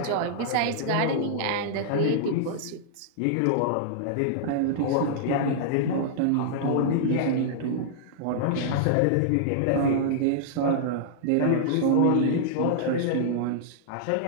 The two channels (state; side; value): different; both; correlation -0.02